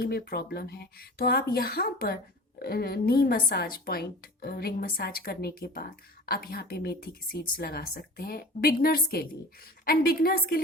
में प्रॉब्लम है, तो आप यहाँ पर नी मसाज पॉइंट, रिंग मसाज करने के बाद आप यहाँ पे मेथी की सीड्स लगा सकते हैं बिगनर्स के लिए। एंड बिगनर्स के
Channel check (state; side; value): normal; both; correlation 0.38